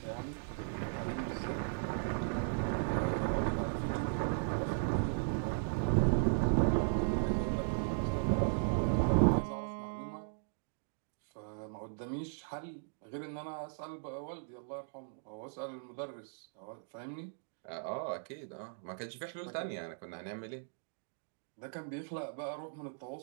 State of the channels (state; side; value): silent; left; digital silence